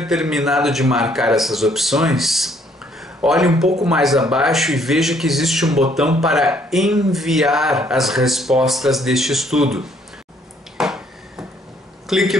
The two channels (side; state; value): both; normal; correlation 0.65